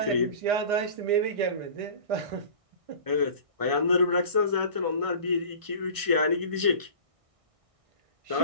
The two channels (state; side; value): late; left; 1.6 ms